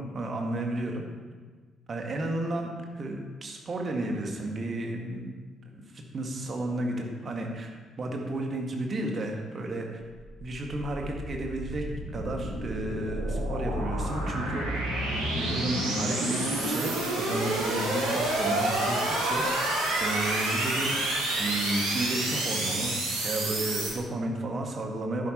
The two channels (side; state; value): both; normal; correlation 0.67